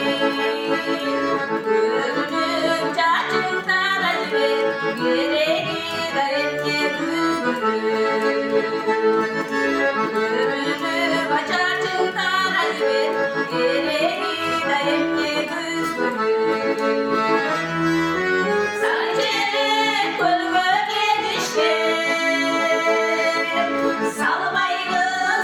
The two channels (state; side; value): identical; both; correlation 1.00